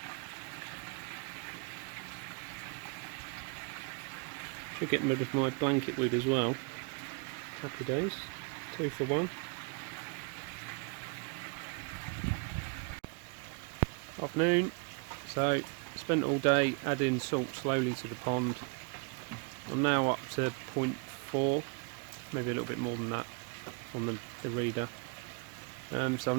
Should get rid of my blanket weed as well. Happy days, 2 for 1. Afternoon. So spent all day adding salt slowly to the pond. I'm now up to 0.4, maybe a little bit more than that on the reader. So I'm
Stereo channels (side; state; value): left; quieter; 35.2 dB